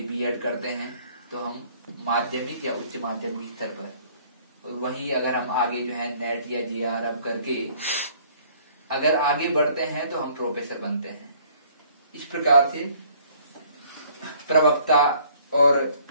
बीएड करते हैं तो हम माध्यमिक या उच्च माध्यमिक स्तर पर। वही अगर हम आगे जो है नेट या जीआरएफ करके अगर आगे बढ़ते हैं तो हम प्रोफेसर बनते हैं। इस प्रकार से प्रवक्ता और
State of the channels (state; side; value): inverted; both; correlation -0.58